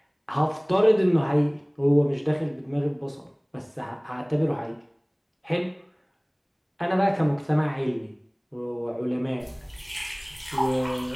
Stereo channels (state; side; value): identical; both; correlation 1.00